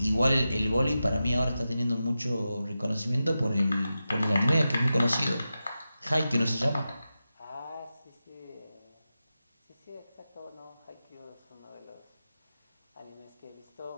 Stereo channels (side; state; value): both; inverted; correlation -0.92